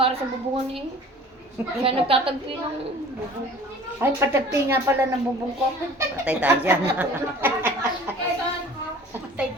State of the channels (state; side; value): normal; both; correlation 0.46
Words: sa bubungan eh. Siya nagtatagpi ng bubong. Ay, patagpi nga pala ng bubong ko. Patay tayo dyan. Patay